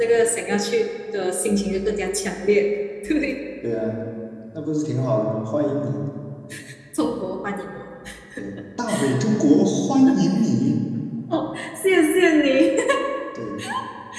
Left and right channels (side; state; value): both; identical; correlation 1.00